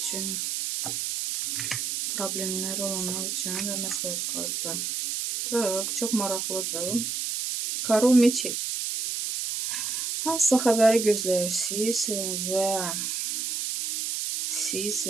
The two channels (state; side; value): noise; right; hiss, 2 dB below the sound